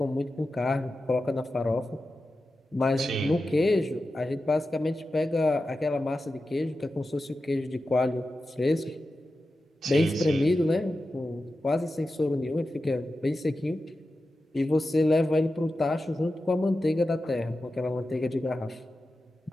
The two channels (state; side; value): normal; both; correlation 0.92